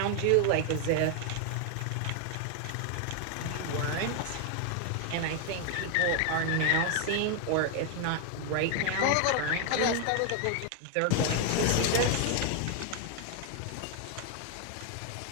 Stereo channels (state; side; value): different; both; correlation 0.00